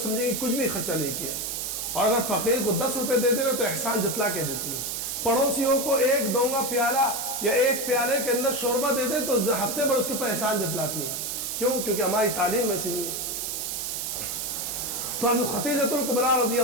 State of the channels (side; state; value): right; noise; hiss, 3 dB below the sound